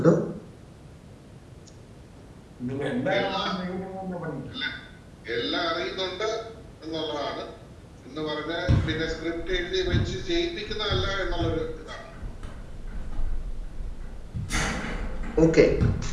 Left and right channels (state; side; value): identical; both; correlation 1.00